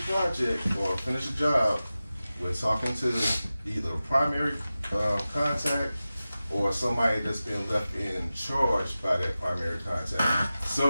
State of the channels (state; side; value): inverted; both; correlation -0.95